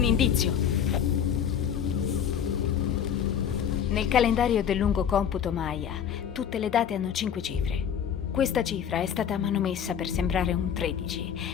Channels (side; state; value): right; quieter; 8.5 dB